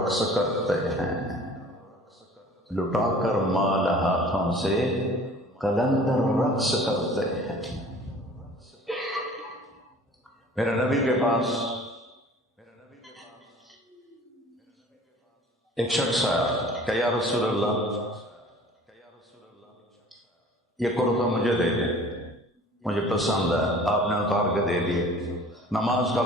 کرتے ہیں، لٹا کر مال ہاتھوں سے کلندر رقص کرتے ہیں۔ میرے نبی کے پاس ایک شخص آیا کہ یا رسول اللہ یہ کرتا مجھے دے دیں، مجھے پسند ہے، آپ نے اتار کے دے دیے۔ نماز کا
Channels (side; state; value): both; normal; correlation 0.47